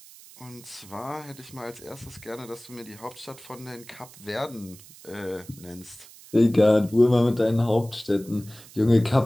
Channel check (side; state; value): right; noise; hiss, 20 dB below the sound